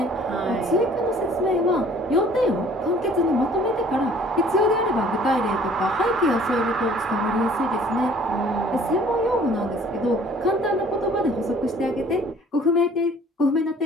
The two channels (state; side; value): normal; both; correlation 0.54